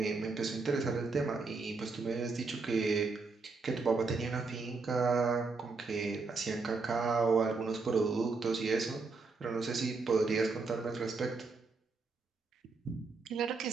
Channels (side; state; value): left; quieter; 4.1 dB